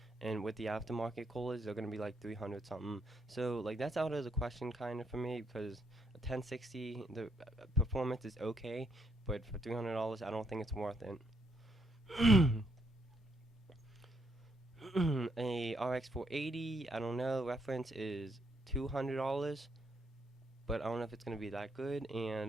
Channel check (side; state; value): both; normal; correlation 0.75